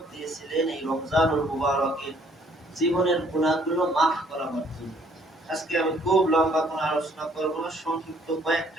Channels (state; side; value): normal; both; correlation 0.62